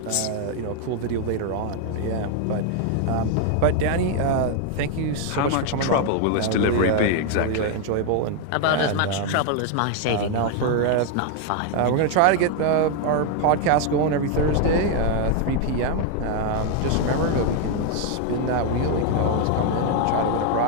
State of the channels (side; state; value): both; different; correlation 0.01